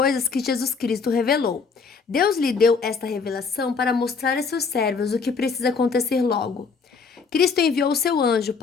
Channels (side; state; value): right; quieter; 5.1 dB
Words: que Jesus Cristo revelou. Deus lhe deu esta revelação para mostrar a seus servos o que precisa acontecer logo. Cristo enviou o seu anjo